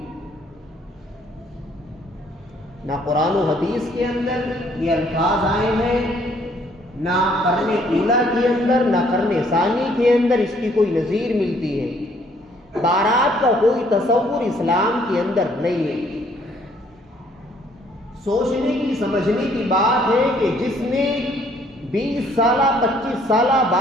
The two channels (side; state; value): both; normal; correlation 0.63